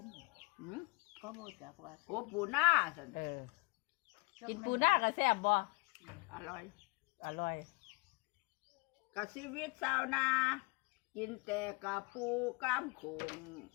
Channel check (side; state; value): right; quieter; 27.4 dB